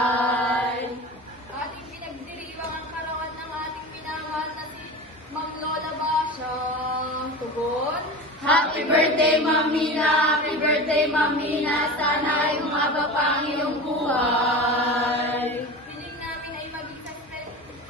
Ating pinagdiriwang ang karawan ng ating minamahal na si Mang Lola Basha. Tugon. Happy birthday, Mamina! Happy birthday, Mamina! Sana ay umaba pa ang iyong buhay! Piling namin ay maging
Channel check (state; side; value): normal; both; correlation 0.30